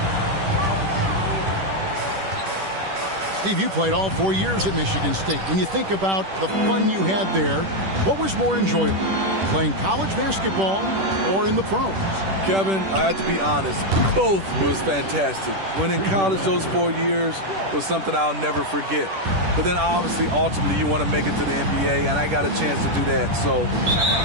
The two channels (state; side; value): late; left; 10 ms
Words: Steve, you played all 4 years at Michigan State. When you think about the fun you had there, what was more enjoyable, playing college basketball or in the pros? Kevin, I have to be honest, both was fantastic. When in college, those 4 years was something I'll never forget. But then obviously, ultimately, you want to make it to the NBA, and I got a chance to do that. So